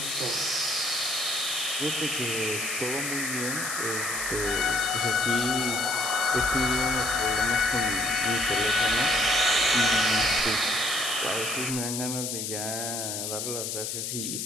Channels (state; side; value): noise; left; hiss, 3 dB below the sound